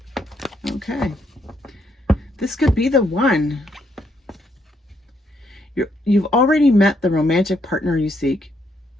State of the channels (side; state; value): both; normal; correlation 0.74